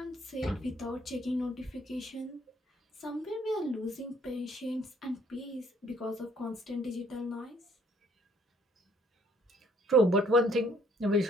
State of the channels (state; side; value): normal; both; correlation 0.62